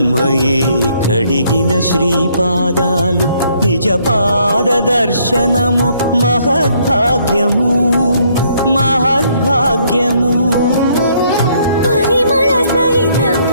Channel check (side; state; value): both; inverted; correlation -0.67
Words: కడిగిన శ్రీపాదాలు, నిజ పాద దర్శనము మహద్భాగ్యము మహద్భాగ్యము. పరిమళ